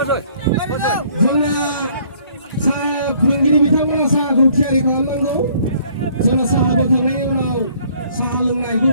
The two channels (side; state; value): both; inverted; correlation -0.60